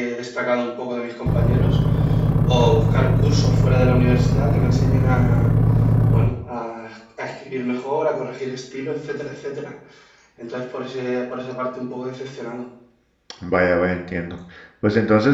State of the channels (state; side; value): identical; both; correlation 1.00